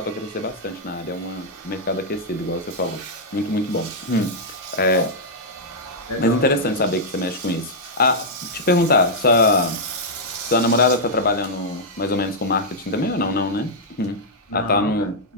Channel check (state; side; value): normal; both; correlation -0.07